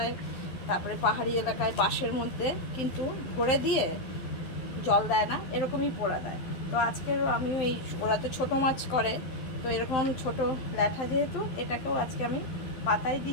তারপরে পাহাড়ি এলাকায় বাঁশের মধ্যে কিন্তু ভরে দিয়ে জল দেয় না, এরকমই পোড়া দেয়। তো আজকের আমিও এই, ওরা তো ছোটো মাছ করে, তো এরকম ছোট ল্যাঠা যেহেতু, এটাকেও আজকে আমি পাতায়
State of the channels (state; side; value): late; right; 12 ms